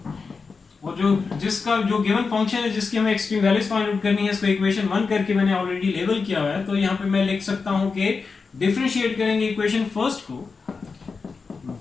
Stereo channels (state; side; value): quieter; right; 4.8 dB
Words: और जो जिसका जो गिवन फंक्शन है जिसकी हमें एक्सट्रीम वैल्यूज फाइंड आउट करनी है, इसको इक्वेशन 1 करके मैंने ऑलरेडी लेबल किया हुआ है। तो यहाँ पे मैं लिख सकता हूँ कि डिफरेंशिएट करेंगे इक्वेशन फर्स्ट को